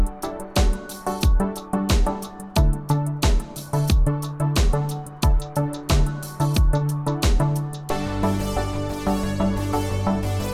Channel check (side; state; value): both; identical; correlation 1.00